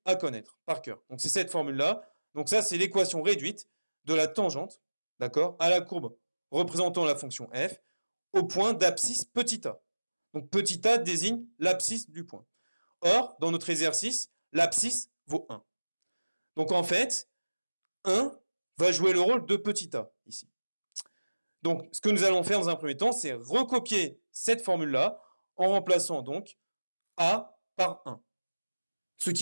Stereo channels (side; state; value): both; inverted; correlation -1.00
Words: à connaître par cœur. Donc c'est cette formule-là. Donc ça, c'est l'équation réduite de la tangente, d'accord, à la courbe représentant la fonction f au point d'abscisse petit a. Donc petit a désigne l'abscisse du point. Or, dans notre exercice, l'abscisse vaut 1. Donc en fait, 1 va jouer le rôle de petit a ici. Donc ce que nous allons faire dans un premier temps, c'est recopier cette formule-là en remplaçant donc a par 1. Ce